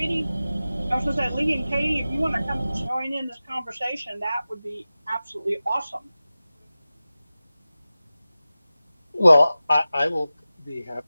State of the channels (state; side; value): inverted; both; correlation -0.96